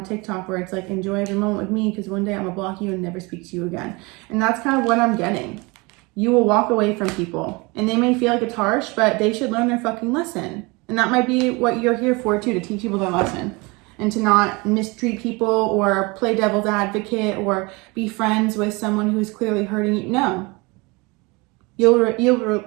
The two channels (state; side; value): quieter; left; 26.3 dB